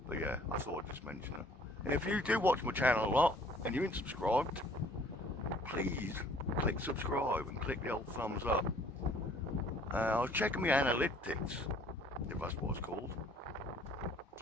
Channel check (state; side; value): normal; both; correlation 0.56